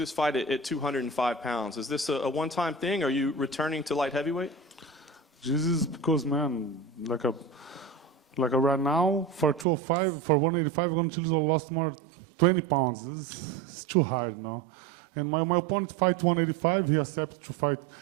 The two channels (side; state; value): left; drops out; at 9.7 s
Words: fight at 205 pounds? Is this a one-time thing? Are you returning to light heavyweight? This is because, man, like right now, for 205, for 185, I'm going to lost more 20 pounds. It's too hard, no? And my opponent fight 185. He accepted to fight.